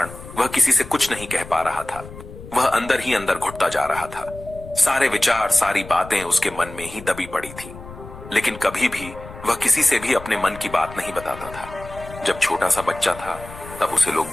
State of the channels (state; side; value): noise; left; rumble, 15 dB below the sound